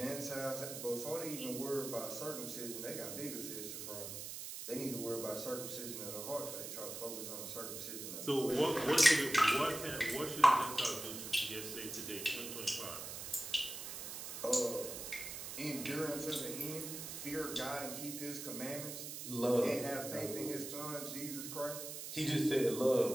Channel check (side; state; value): right; noise; hiss, 7 dB below the sound